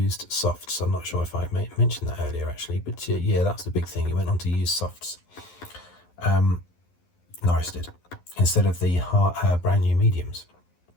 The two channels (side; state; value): right; late; 11 ms